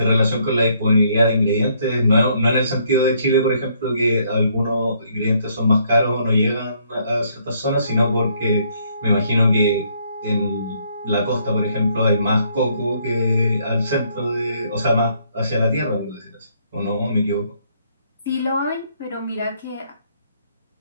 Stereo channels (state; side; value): inverted; both; correlation -0.68